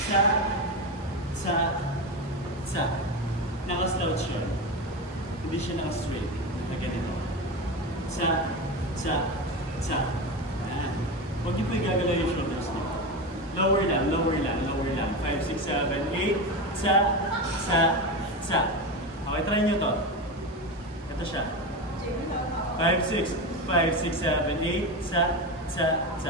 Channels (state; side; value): normal; both; correlation 0.20